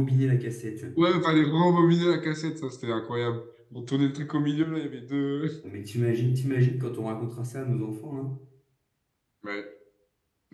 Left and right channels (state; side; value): identical; both; correlation 1.00